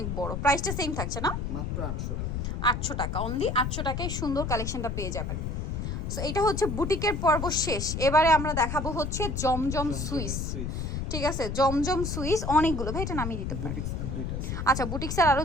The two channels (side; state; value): left; noise; rumble, 3 dB below the sound